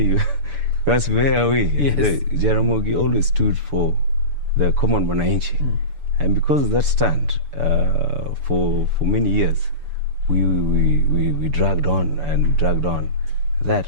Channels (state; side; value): late; left; 6.9 ms